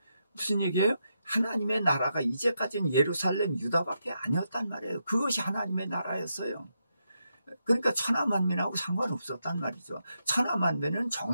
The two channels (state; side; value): inverted; both; correlation -0.83